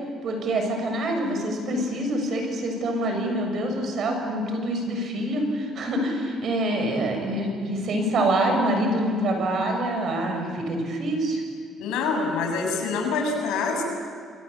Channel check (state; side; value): normal; both; correlation 0.56